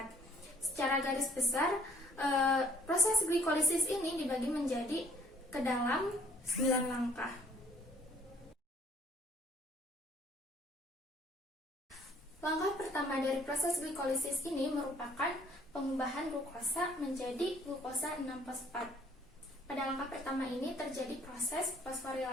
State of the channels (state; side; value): normal; both; correlation 0.59